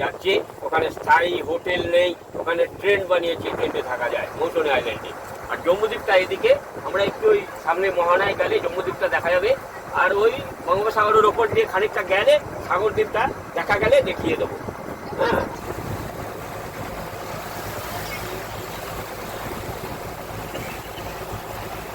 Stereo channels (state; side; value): identical; both; correlation 1.00